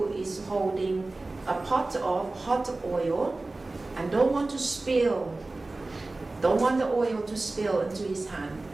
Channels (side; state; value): left; quieter; 3.1 dB